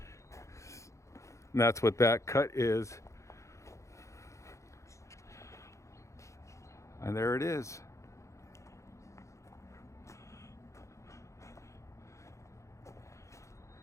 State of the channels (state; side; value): late; right; 0.15 ms